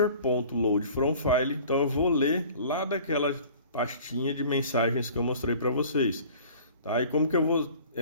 from file. Então eu vou ler lá daquela pastinha de mensagens que eu mostrei para vocês, tá? E como que eu vou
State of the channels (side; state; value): both; inverted; correlation -0.47